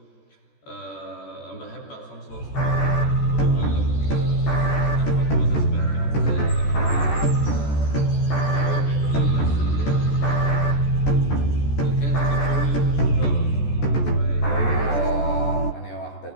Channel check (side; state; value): right; late; 14 ms